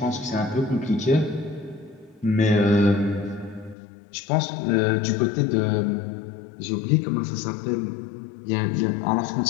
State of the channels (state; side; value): drops out; right; at 3.8 s